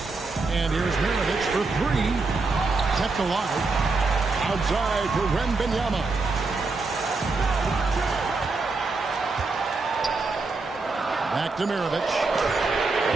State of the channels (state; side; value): quieter; left; 3.8 dB